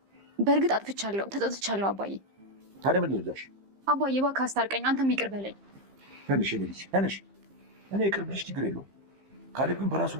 በእርግጥ አጥፍቻለሁ፣ ተጸጽቻለሁ አባዬ። ታዲያ ምን ልላሽ? አባዬ እባክህ አስታርቀኝ፣ አንተም ይቅር በለኝ። ትንሽ ልጅ ትንሽ እኔ ይቅር ብልሽ ችግር የለውም። ካሌብ ግን በራሱ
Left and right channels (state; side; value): late; left; 15 ms